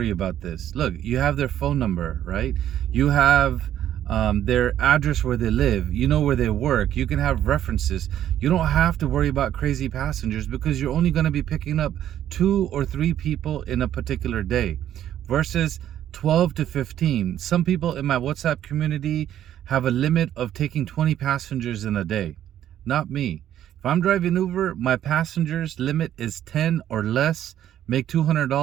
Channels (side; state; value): left; quieter; 11.2 dB